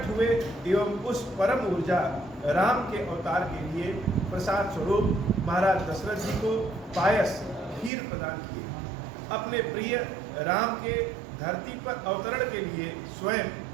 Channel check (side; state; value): left; drops out; at 7.9 s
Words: हुए एवं उस परम ऊर्जा राम के अवतार के लिए प्रसाद स्वरूप महाराज दशरथ जी को पायस, खीर प्रदान किए। अपने प्रिय राम के धरती पर अवतरण के लिए स्वयं